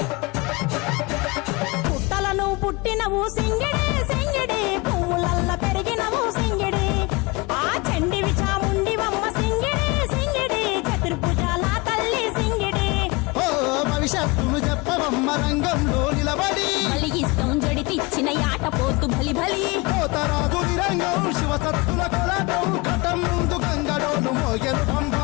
పుట్టినవు సింగిడి సింగిడి, పువ్వులల్ల పెరిగినవు సింగిడి, ఆ చండివి చాముండివమ్మ సింగిడి సింగిడి, చతుర్భుజాల తల్లి సింగిడి. ఓ భవిష్యత్తును చెప్పవమ్మ రంగంలో నిలబడి, బలిగిస్తాం జడితిచ్చిన యాట పోతు బలి బలి, పోతరాజు రంగం శివసత్తుల కొలటం, ఘటం ముందు గంగడోలు మోగెను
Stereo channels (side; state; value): right; quieter; 25.4 dB